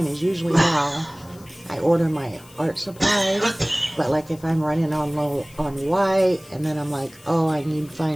is usually how I order my art supplies. But like if I'm running on low on white, and then I'm like, oh, I need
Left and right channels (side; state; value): left; noise; hiss, 24 dB below the sound